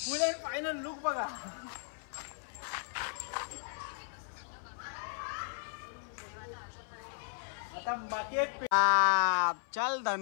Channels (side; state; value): right; silent; 54 dB below the other